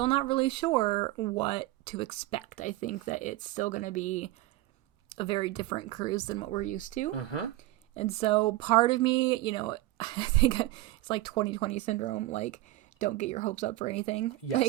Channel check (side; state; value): left; quieter; 17.3 dB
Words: not really sure what to expect. I think that it's still going to be a very different cruise than what we're used to. Mm-hmm. And so part of me, I think it's like 2020 syndrome, like, don't get your hopes up for anything.